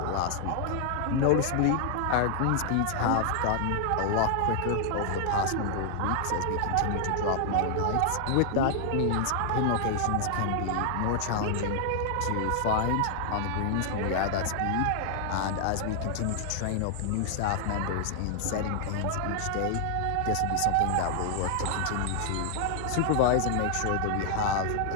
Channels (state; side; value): different; both; correlation 0.00